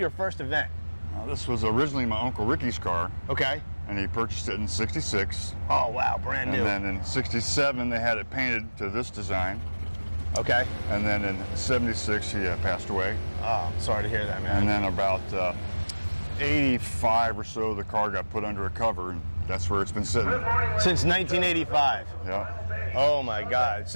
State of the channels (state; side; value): inverted; both; correlation -1.00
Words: first event? This was originally my Uncle Ricky's car. Okay. And he purchased it in 66. Oh, wow, brand new. And then in 67, they had it painted to this design. Okay. And then in 76, he passed away. Oh, sorry to hear that, man. And then about 85 or so, the car got put under a cover, and that's where it's been sitting. Since 1985. Yeah. Oh my God.